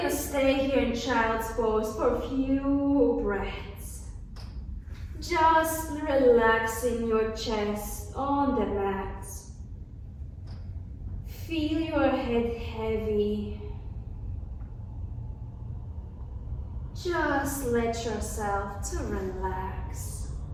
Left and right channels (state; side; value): identical; both; correlation 1.00